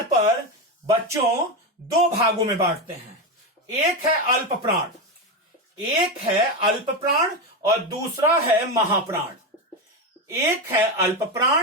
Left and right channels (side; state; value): both; normal; correlation 0.14